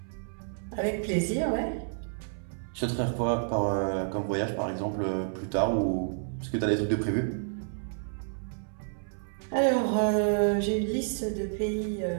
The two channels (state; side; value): silent; left; 57 dB below the other